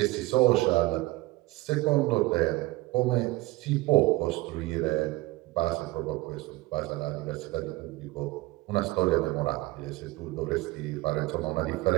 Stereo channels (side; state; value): left; quieter; 20.3 dB